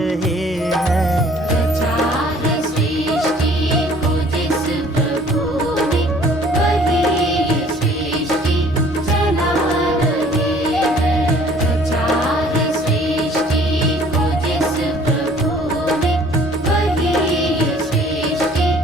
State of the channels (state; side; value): normal; both; correlation 0.55